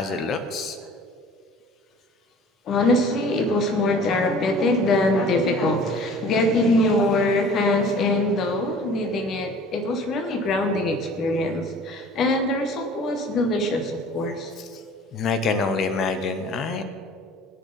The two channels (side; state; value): both; normal; correlation 0.47